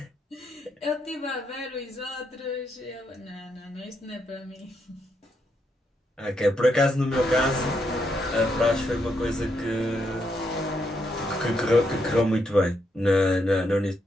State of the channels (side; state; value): both; normal; correlation 0.79